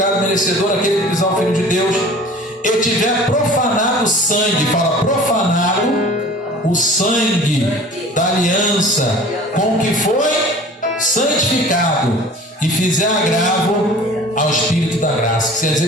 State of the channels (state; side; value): normal; both; correlation 0.44